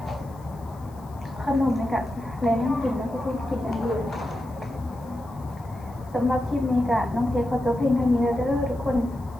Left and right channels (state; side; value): noise; left; hiss, 28 dB below the sound